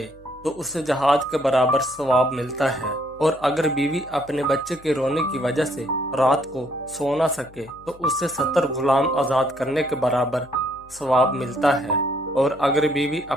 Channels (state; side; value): noise; left; hum, 25 dB below the sound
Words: तो उसे जहाद के बराबर सवाब मिलता है और अगर बीवी अपने बच्चे के रोने की वजह से रात को सो ना सके तो उसे 70 गुलाम आजाद करने के बराबर सवाब मिलता है और अगर बीवी